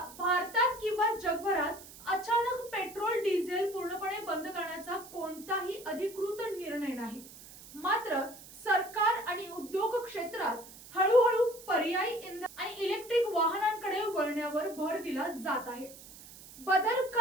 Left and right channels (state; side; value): noise; right; hiss, 18 dB below the sound